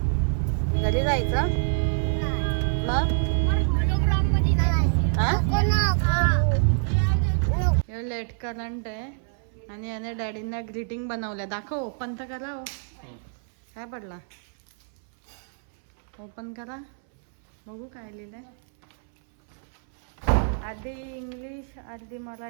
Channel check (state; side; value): silent; left; 61 dB below the other